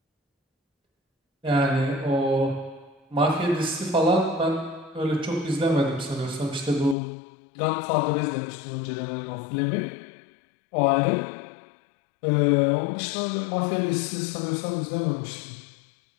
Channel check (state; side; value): drops out; right; at 7.0 s